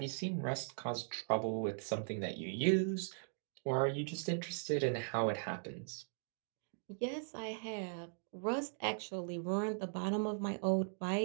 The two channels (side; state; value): left; silent; digital silence